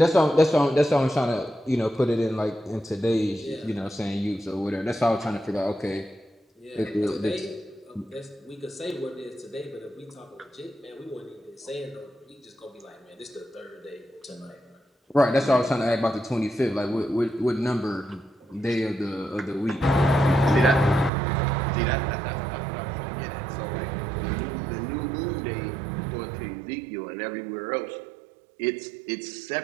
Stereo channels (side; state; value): left; drops out; at 21.1 s